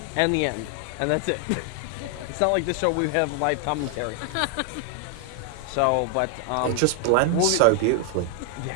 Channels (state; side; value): different; both; correlation 0.00